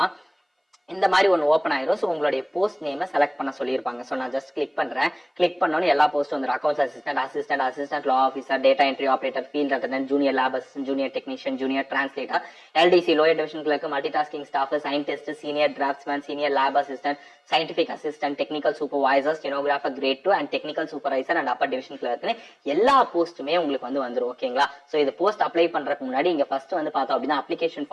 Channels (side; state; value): both; identical; correlation 1.00